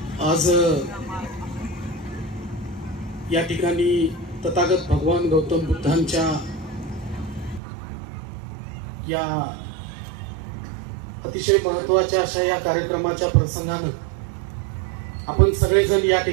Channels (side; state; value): left; drops out; at 7.6 s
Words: आज या ठिकाणी तथागत भगवान गौतम बुद्धांच्या या अतिशय महत्त्वाच्या अशा या कार्यक्रमाच्या प्रसंगानं आपण सगळेजण या